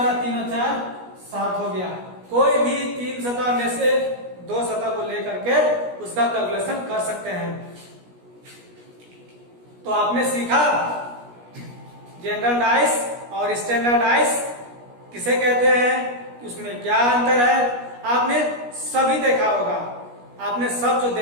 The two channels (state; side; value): late; left; 17 ms